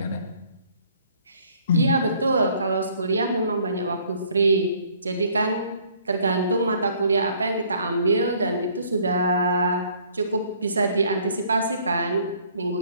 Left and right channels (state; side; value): inverted; both; correlation -0.60